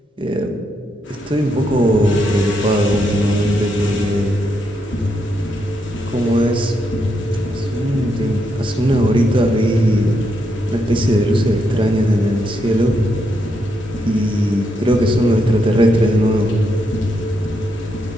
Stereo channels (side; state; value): both; normal; correlation 0.80